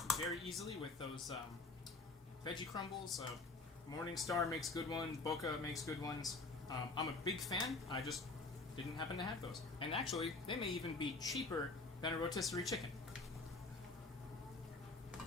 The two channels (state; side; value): quieter; right; 3.5 dB